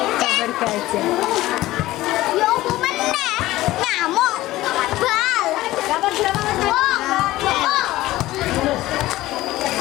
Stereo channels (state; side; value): quieter; right; 16.7 dB